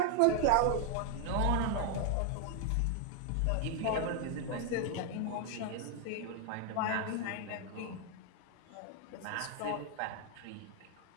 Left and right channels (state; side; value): different; both; correlation 0.00